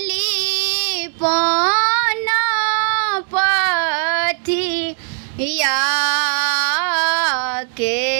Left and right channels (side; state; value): left; silent; digital silence